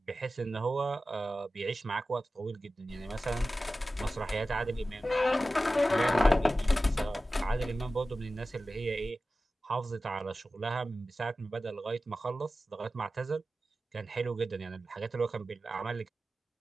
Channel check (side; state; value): both; normal; correlation 0.94